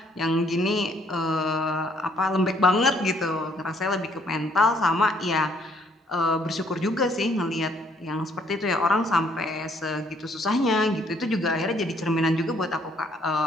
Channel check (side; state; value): both; normal; correlation 0.65